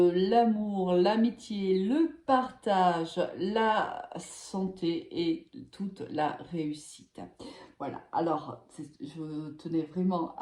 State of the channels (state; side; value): identical; both; correlation 1.00